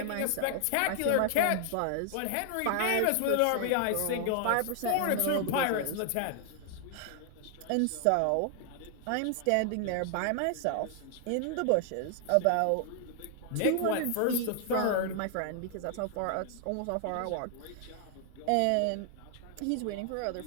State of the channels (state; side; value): different; both; correlation 0.00